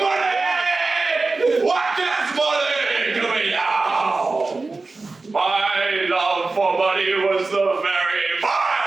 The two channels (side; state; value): left; quieter; 3.7 dB